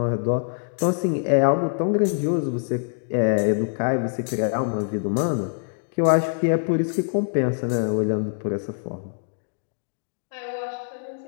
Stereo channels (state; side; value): silent; right; digital silence